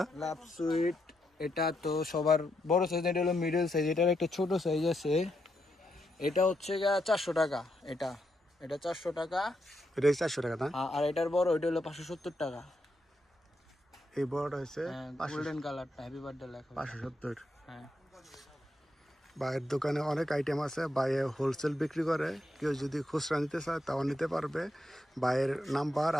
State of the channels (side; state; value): both; normal; correlation 0.81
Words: লাভ সুইট এটা তো সবার বড় সাইজ। এটা হলো মিডল সাইজ। এটার একটা ছোট সাইজ আছে, এটা হচ্ছে গিয়া 400 টাকা। এটা এটা 400 টাকা। এটা 400 টাকা না? আর এটার বড় ওইটা হলো 570 টাকা। এই বড়টা হচ্ছে গোল্ডেন কালারটা হ্যাপি বার্থডে লেখা। 570। হ্যাঁ, ভাইয়ের দোকানে অনেক আইটেম আছে। ভাইয়ে হোলসেল বিক্রি করে, কেউ যদি খুচরা নিতে চায় তাও নিতে পারবে। ভাইয়ের নাম্বার